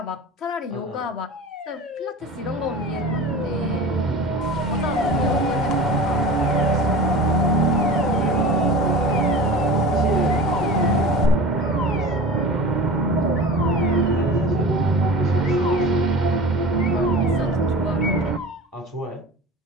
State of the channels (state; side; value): normal; both; correlation 0.35